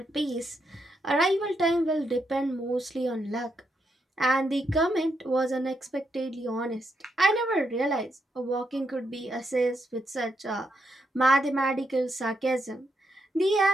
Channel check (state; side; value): normal; both; correlation 0.80